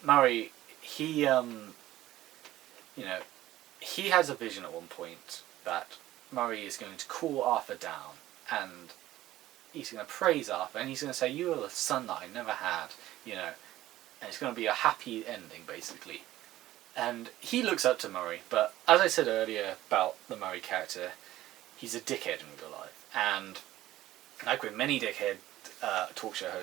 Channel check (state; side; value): quieter; left; 15.0 dB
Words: Maury, he, you know, he has a vision at one point that Murray is going to cool Arthur down, and he's going to praise Arthur, and he's going to say, "You are the son that I never had," you know, and it's going to be a happy ending, basically. And he looks up to Murray, but as I said earlier about the Murray character, he's a dickhead in real life, and like with many dickhead talk show